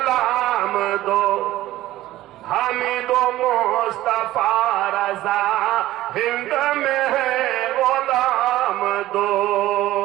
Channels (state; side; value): quieter; left; 15.6 dB